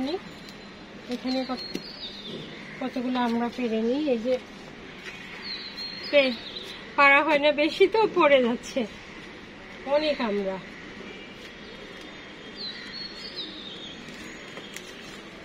নিই। এখানে কতগুলো আমরা পেরে নিই। এই যে পারা হয় না বেশি, তো পড়ে যাচ্ছে অনেক আমরা।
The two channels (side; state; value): both; identical; correlation 1.00